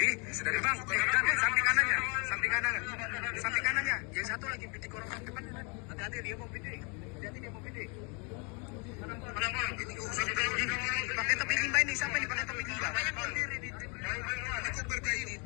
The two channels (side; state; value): right; quieter; 34.0 dB